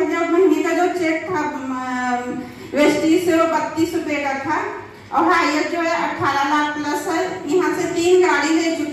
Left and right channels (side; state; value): both; identical; correlation 1.00